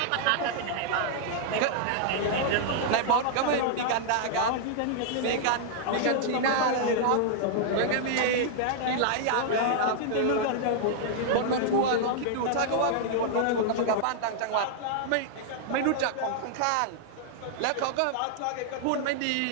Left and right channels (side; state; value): both; different; correlation -0.01